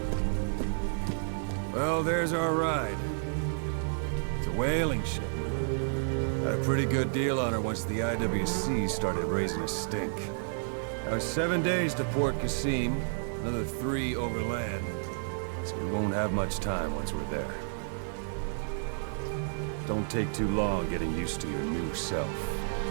Well, there's our ride. It's a whaling ship. Had a pretty good deal on her once the IWC started raising a stink. Now, 7 days to Port Qasim, another 3 overland. So we won't have much time once we're there. Don't take too long getting used to your new self.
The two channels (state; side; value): silent; left; digital silence